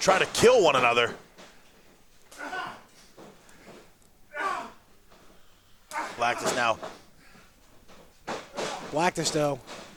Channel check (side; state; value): both; identical; correlation 1.00